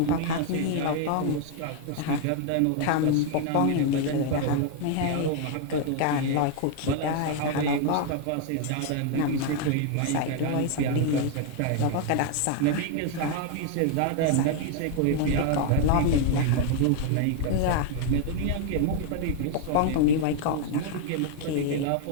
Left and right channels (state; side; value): different; both; correlation 0.01